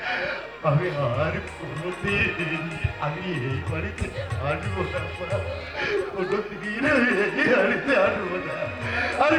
আমি আর কোনোদিন আমি এই বাড়িতে আসবো না, কোনোদিন আমি এই বাড়িতে আসবো না, আর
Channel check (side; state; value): both; identical; correlation 1.00